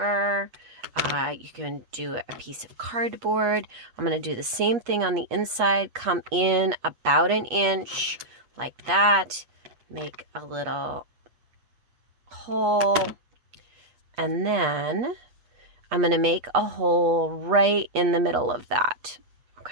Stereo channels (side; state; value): left; late; 8.3 ms